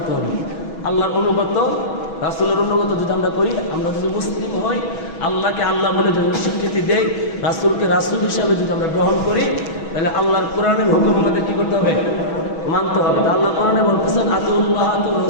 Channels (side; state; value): right; late; 6.2 ms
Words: হবে? আল্লাহর অনুগত, রাসূলের অনুগত যদি আমরা করি, আমরা যদি মুসলিম হই, আল্লাহকে আল্লাহ বলে যদি স্বীকৃতি দেই, রাসূলকে রাসূল হিসাবে যদি আমরা গ্রহণ করি, তাহলে আল্লাহর কোরআনের হুকুম আমাদের কি করতে হবে? মানতে হবে। তা আল্লাহ কোরআনে বলতেছেন আতিউল্লাহ আতিউর